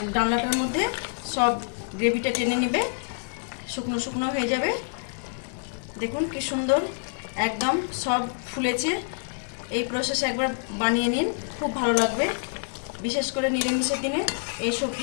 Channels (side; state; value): right; silent; digital silence